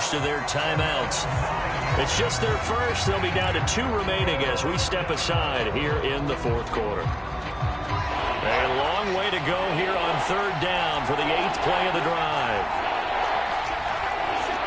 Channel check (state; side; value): identical; both; correlation 1.00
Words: of their timeouts. It's just their first. They'll be down to 2 remaining as we step aside here in the fourth quarter. A long way to go here on third down for the 8th play of the drive.